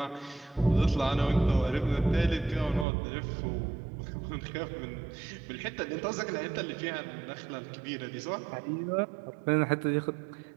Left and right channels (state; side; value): drops out; left; at 2.9 s